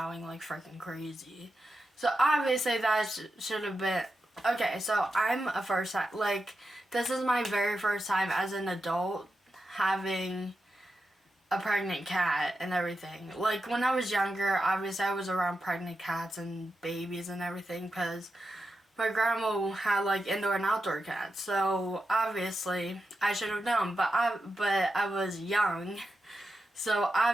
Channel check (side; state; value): both; normal; correlation 0.89